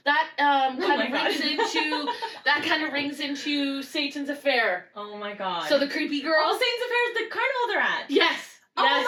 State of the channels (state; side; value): identical; both; correlation 1.00